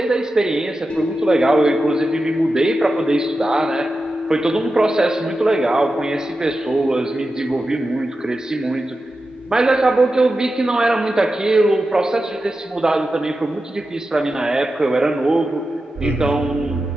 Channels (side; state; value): both; normal; correlation 0.91